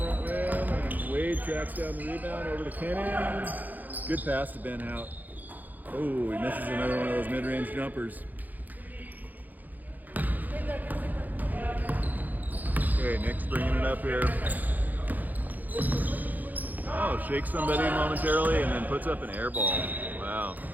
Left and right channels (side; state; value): left; late; 0.083 ms